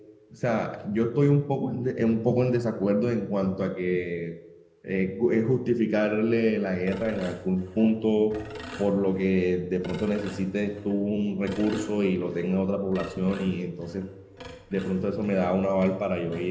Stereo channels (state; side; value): identical; both; correlation 1.00